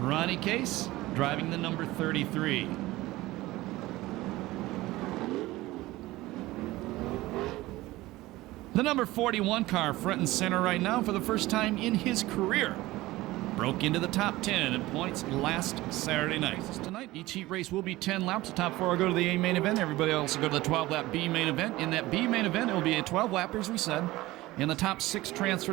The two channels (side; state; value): left; quieter; 18.3 dB